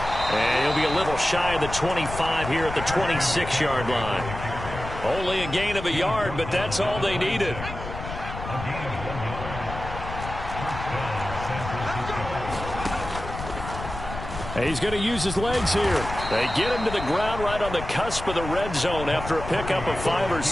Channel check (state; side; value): noise; left; rumble, 9 dB below the sound